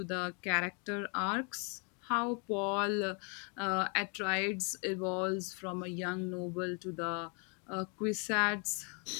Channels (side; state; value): right; quieter; 36.3 dB